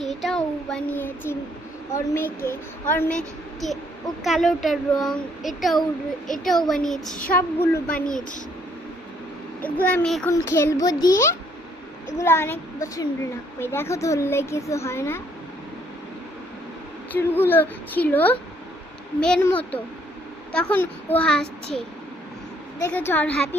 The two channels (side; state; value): both; normal; correlation 0.66